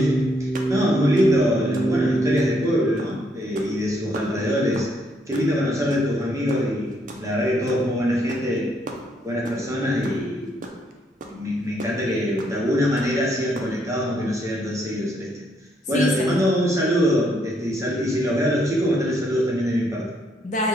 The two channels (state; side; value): normal; both; correlation 0.72